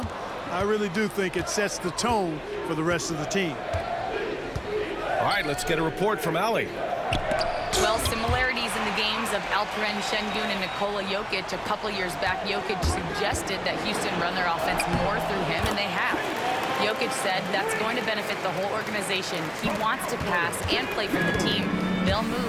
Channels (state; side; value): identical; both; correlation 1.00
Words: I really do think it sets the tone for the rest of the team. All right, let's get a report from Allie. Well, similarities in the games of Alperen Şengün and Nikola Jokic. A couple years back, Jokic suggested that Houston run their offense more through him, and they have. Jokic said that's going to benefit the whole organization. He wants to pass and play for the team. They'll